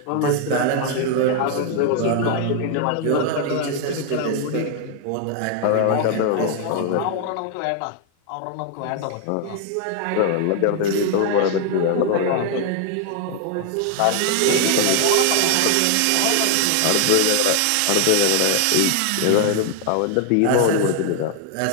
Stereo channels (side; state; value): both; different; correlation 0.00